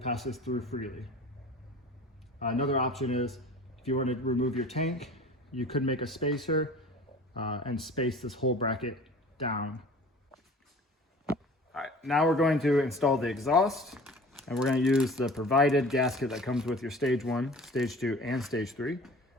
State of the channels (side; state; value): both; normal; correlation 0.43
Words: passes through freely. Another option is, if you want to remove your tank, you could make a spacer and space this whole bracket down. All right, now we're going to install the exhaust, and we're going to use the provided gasket that comes with your stage 1, stage 2, and stage 3.